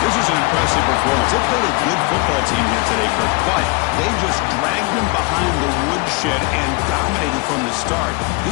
This is an impressive performance. They played a good football team here today, Kirk, but they just dragged them behind the woodshed and dominated from the start.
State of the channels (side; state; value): right; quieter; 27.8 dB